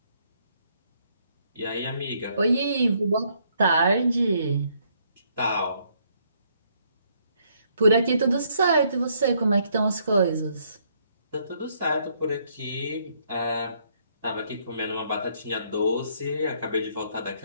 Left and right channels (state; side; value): inverted; both; correlation -0.70